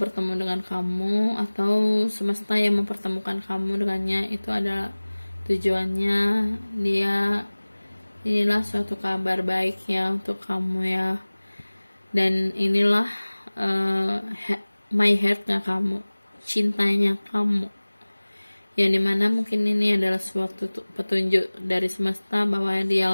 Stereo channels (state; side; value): inverted; both; correlation -1.00